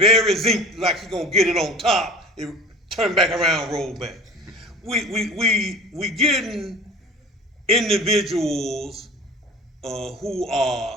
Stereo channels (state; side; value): normal; both; correlation 0.39